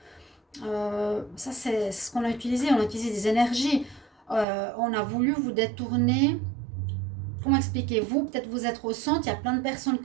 Ça, c'est ce qu'on a utilisé. On a utilisé des énergies. On a voulu vous détourner. Comment expliquer? Vous, peut-être vous êtes au centre, il y a plein de personnes qui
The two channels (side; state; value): left; drops out; at 4.5 s